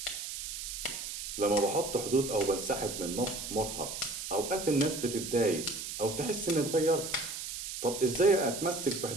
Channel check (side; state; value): right; noise; hiss, 6 dB below the sound